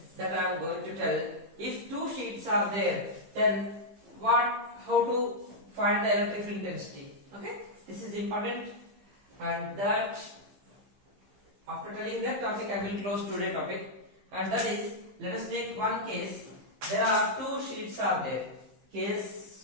that I am going to tell. If two sheets are there, then how to find the electric field intensity? Okay? This is important. And that after telling that topic, I will close today's topic. And that is, let us take one case. There are two sheets are there.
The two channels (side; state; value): left; late; 15 ms